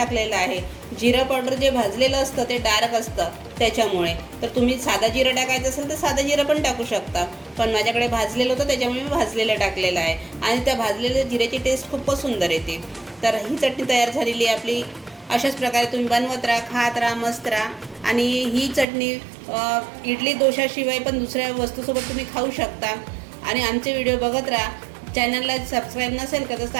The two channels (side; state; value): left; drops out; at 18.9 s